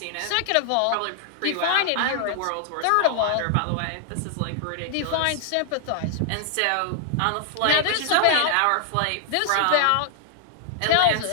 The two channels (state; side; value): different; both; correlation 0.00